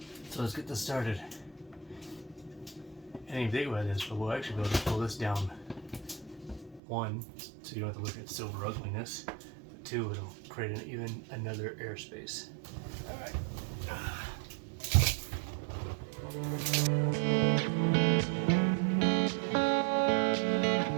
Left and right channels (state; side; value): drops out; left; at 6.8 s